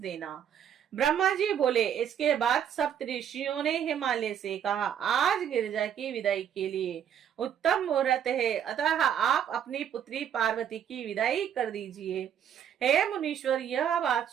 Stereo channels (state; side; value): quieter; left; 9.1 dB